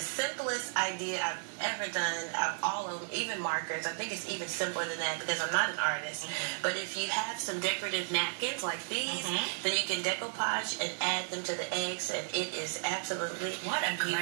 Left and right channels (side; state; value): left; silent; digital silence